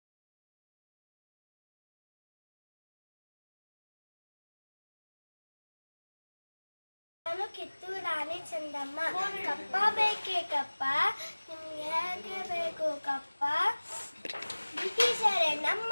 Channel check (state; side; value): inverted; both; correlation -1.00